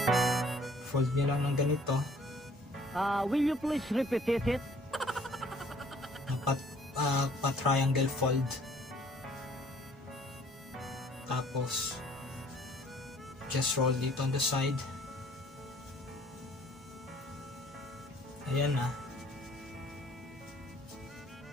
Fold nyo lang ng ganito. Will you please repeat it? Pa-triangle fold. Tapos, just roll dito on the side. Ayan na.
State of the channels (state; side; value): normal; both; correlation 0.58